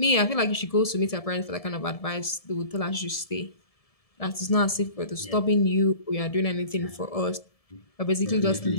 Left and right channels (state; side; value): late; right; 1.7 ms